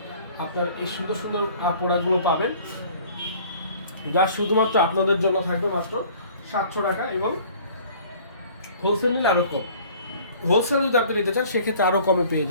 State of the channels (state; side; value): inverted; both; correlation -0.50